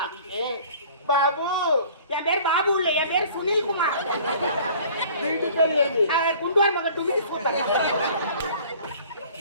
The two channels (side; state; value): both; inverted; correlation -0.49